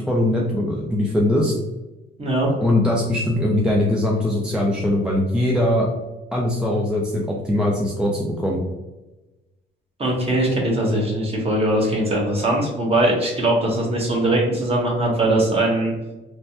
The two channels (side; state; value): both; normal; correlation 0.55